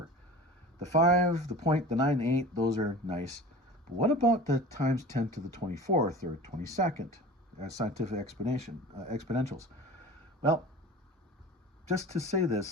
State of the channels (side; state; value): both; normal; correlation 0.37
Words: The 5, the point, the 9, 8, those are nice. But what about the times 10 to the 24th or 22nd scientific exponentials? Well, just to say